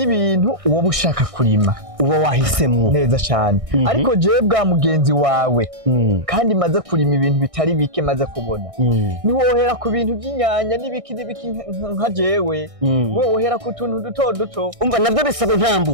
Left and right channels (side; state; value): left; late; 1.6 ms